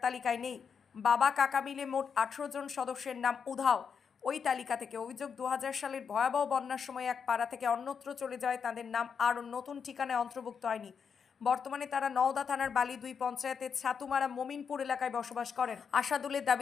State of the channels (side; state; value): right; quieter; 6.6 dB